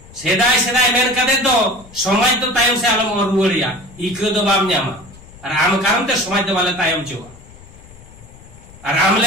सेदाय सेदाय मेन कदे तो समाज तो तायम से आलम और रुवरिया इको दो बाम न्यामा और आम कारण ते समाज दो वाले तायम चोवा और आम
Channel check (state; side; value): noise; left; rumble, 21 dB below the sound